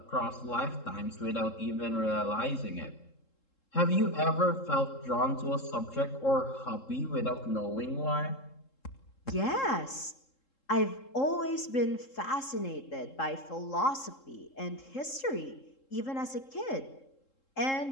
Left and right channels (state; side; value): late; right; 3.7 ms